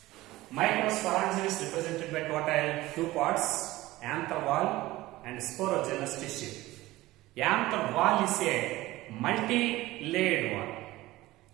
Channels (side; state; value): left; quieter; 18.0 dB